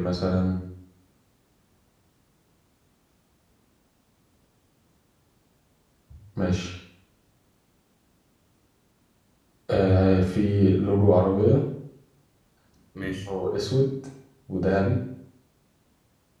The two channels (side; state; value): both; identical; correlation 1.00